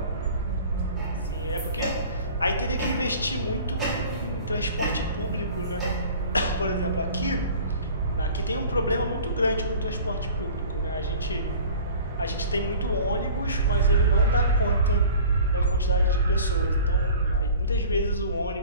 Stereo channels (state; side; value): inverted; both; correlation -0.43